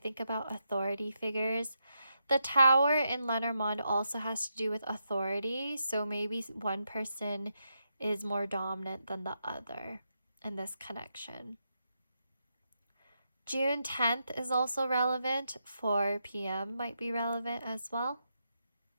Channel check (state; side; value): inverted; both; correlation -0.84